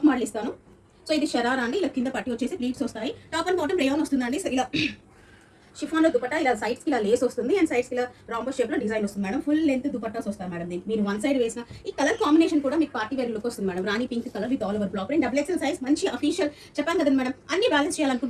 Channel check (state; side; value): identical; both; correlation 1.00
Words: మోడల్ ఇస్తాను. సో ఇది షరారా అండి, ఇలా కింద పట్టి వచ్చేసి ప్లీట్స్ వస్తాయి. టాప్ అండ్ బాటమ్ రేయాన్ వస్తుందండి. సో ఇలా షిఫాన్ లో దుపట్టా ఇలా సైడ్స్ కి ఇలా లేస్ వస్తుంది అండ్ సైడ్స్ కి ఇలా రాంబో షేప్ లో డిజైన్ వస్తుంది మేడం. ఫుల్ లెంత్ దుపట్టాస్ వస్తాయి మేడం. దీనికి మీరు వన్ సైడ్ వేసిన ఈ కలర్ కాంబినేషన్ కూడా మీకు పార్టీ వేర్ లుక్ వస్తుంది madam. Rani pink colour with all over black print. Double XL size మంచి అఫీషియల్ చెప్పాను కదా మేడం, అన్ని బ్యాలెన్స్